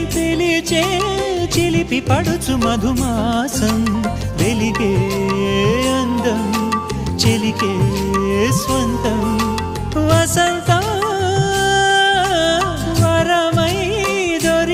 పిలిచే చిలిపి పడుచు మధుమాసం వెలిగే అందం చెలికే స్వంతం వసంతం వరమై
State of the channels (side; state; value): both; identical; correlation 1.00